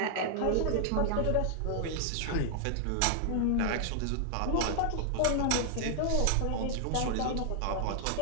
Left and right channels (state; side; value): different; both; correlation -0.01